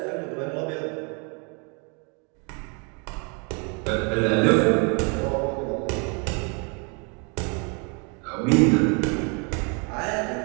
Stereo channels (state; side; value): quieter; left; 34.4 dB